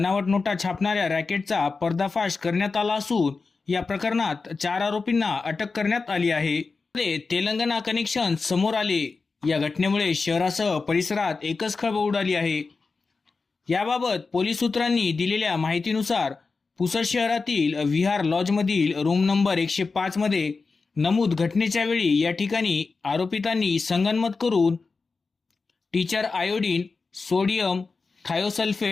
नोटा छापणाऱ्या रॅकेटचा पर्दाफाश करण्यात आला असून या प्रकरणात 4 आरोपींना अटक करण्यात आली आहे. तेलंगणा कनेक्शन समोर आले. या घटनेमुळे शहरासह परिसरात एकच खळबळ उडाली आहे. याबाबत पोलीस सूत्रांनी दिलेल्या माहितीनुसार पुसद शहरातील विहार लॉजमधील रूम नंबर 105 मध्ये नमूद घटनेच्या वेळी या ठिकाणी आरोपितांनी संगनमत करून teacher iodine, sodium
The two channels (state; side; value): quieter; right; 4.3 dB